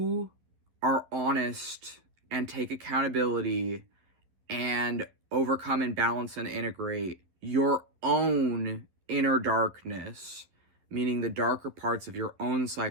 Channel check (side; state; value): left; late; 11 ms